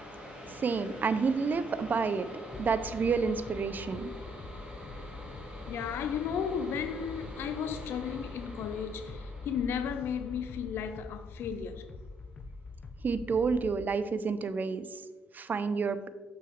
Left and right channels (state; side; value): normal; both; correlation 0.69